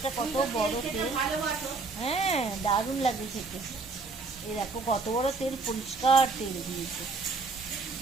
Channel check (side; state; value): left; quieter; 4.0 dB